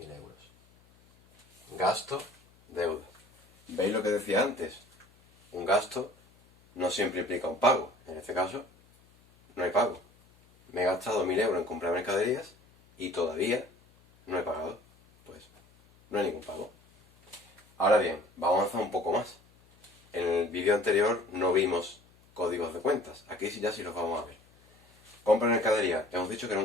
euros. Gasto, deuda. ¿Veis lo que decía antes? Un gasto no siempre implica un pago. En este caso, no hay pago. Me he gastado 1.000 euros en comprar mercaderías y todavía no he pagado. Pues no hay ningún pago. Ahora bien, vamos a avanzar un poco más. En el vídeo anterior no vimos códigos de cuentas. Aquí sí ya sí los vamos a ver. Compra mercadería, hemos dicho que era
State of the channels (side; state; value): left; noise; hum, 30 dB below the sound